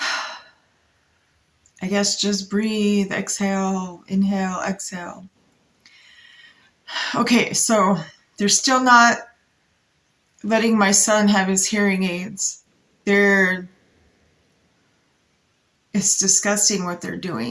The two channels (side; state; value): both; identical; correlation 1.00